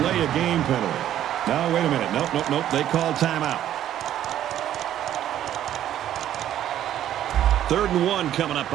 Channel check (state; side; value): quieter; left; 11.5 dB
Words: of game penalty. No, wait a minute. Nope. They called timeout. 3rd and 1 coming up